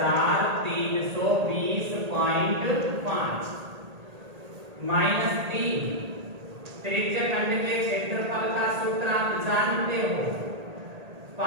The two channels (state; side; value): late; left; 1.8 ms